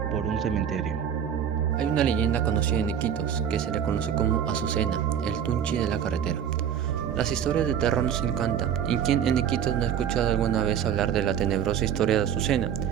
por un cementerio. Hay una leyenda conocida en Iquitos que se le conoce como Azucena, el Tunchi de la carretera. Las historias de terror nos encantan, y quien en Iquitos no ha escuchado alguna vez hablar de la tenebrosa historia de Azucena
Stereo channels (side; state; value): left; quieter; 8.8 dB